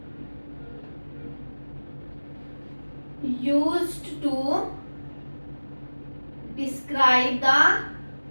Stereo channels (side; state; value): both; inverted; correlation -1.00